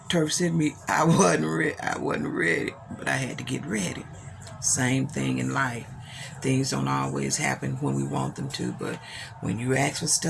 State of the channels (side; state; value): both; identical; correlation 1.00